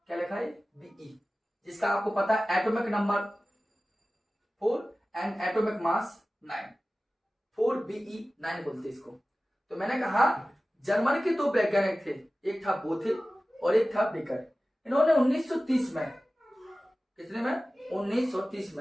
क्या लिखा है? बीई, जिसका आपको पता है atomic number 4 and atomic mass 9, 4Be9 बोलते इसको। तो मैंने कहा जर्मनी के 2 वैज्ञानिक थे, एक था बोथे और एक था बेकर। इन्होंने 1930 में, कितने में? 1930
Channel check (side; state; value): both; normal; correlation 0.96